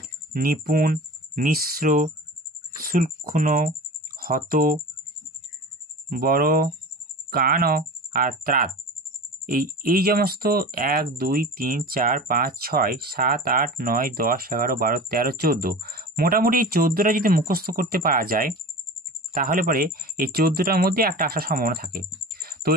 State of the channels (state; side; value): normal; both; correlation 0.34